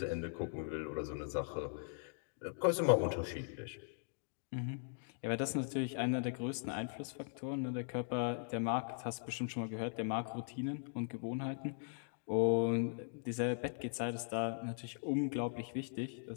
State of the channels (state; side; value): silent; right; digital silence